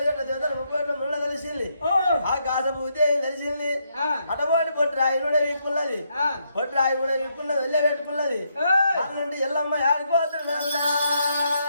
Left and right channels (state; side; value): inverted; both; correlation -0.77